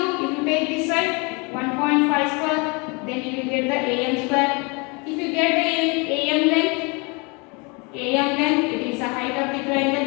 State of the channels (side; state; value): right; quieter; 30.0 dB